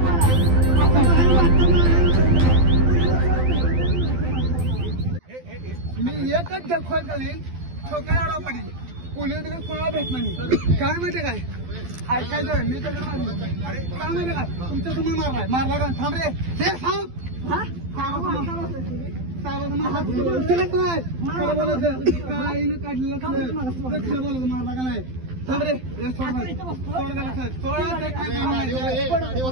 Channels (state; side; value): late; left; 12 ms